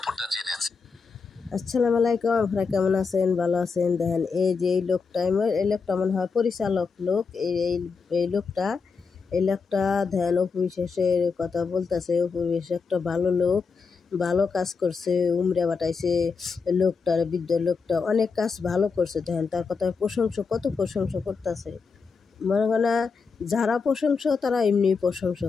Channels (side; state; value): right; quieter; 5.1 dB